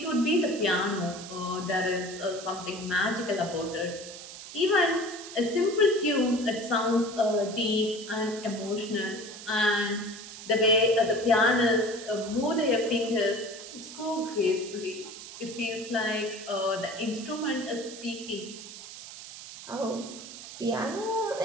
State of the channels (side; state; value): right; noise; hiss, 13 dB below the sound